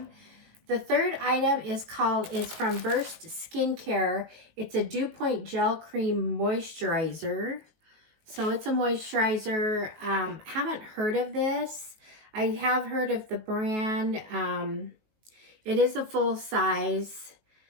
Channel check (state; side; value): late; left; 19 ms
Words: The third item is from Burst Skincare. It's a Dew Point Gel Cream Moisturizer. So it's a moisturizer. Haven't heard of this. I have heard of the brand. It is a full size.